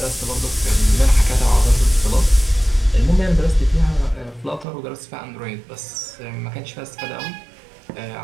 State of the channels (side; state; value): left; drops out; at 4.7 s